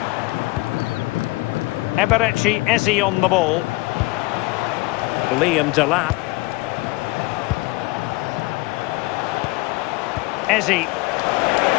Eberechi Eze on the ball. Liam Delap. Eze.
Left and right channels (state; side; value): quieter; right; 22.7 dB